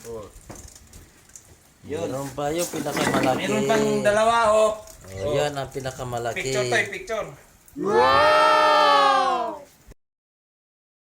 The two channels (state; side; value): identical; both; correlation 1.00